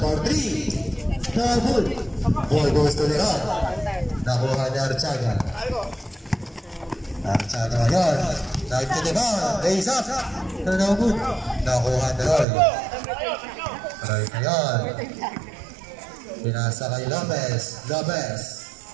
3. No good. Ball goes to Leron. Nakuha ni Archaga. Archaga ngayon. Dive to the ball. Raise up. No good. Nakuha ni Roy. Roy ngayon. Pinasa kay Lopez. Lopez.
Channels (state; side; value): drops out; left; at 12.5 s